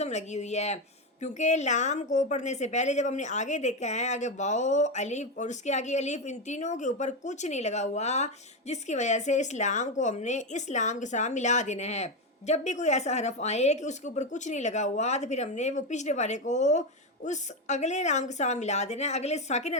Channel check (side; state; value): both; normal; correlation 0.11